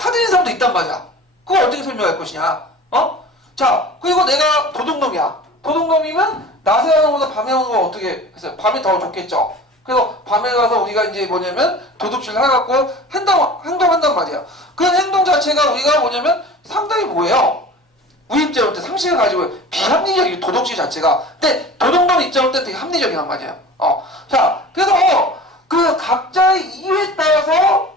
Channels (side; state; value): both; normal; correlation 0.39